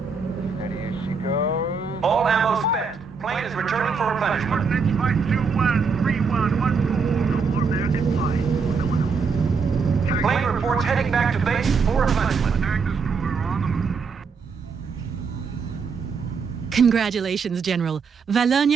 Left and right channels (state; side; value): quieter; left; 5.2 dB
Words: Steady as she goes. All ammo spent. Plane is returning for replenishment. Coordinates 521-3114. No more American pie. We're going home. Plane reports heading back to base for replenishment. Attack destroyer on the move. Congratulations, General.